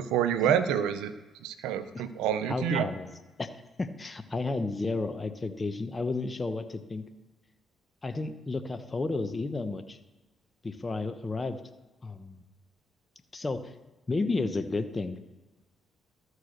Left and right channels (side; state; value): both; normal; correlation 0.65